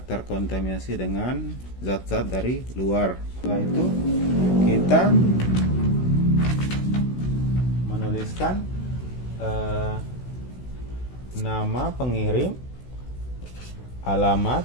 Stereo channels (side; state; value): right; late; 16 ms